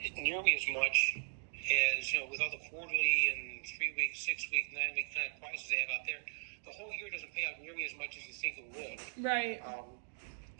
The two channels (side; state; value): left; silent; digital silence